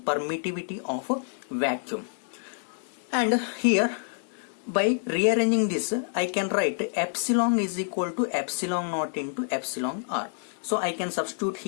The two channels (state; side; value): silent; right; digital silence